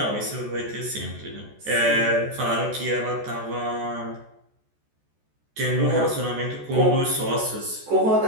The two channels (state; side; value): late; left; 14 ms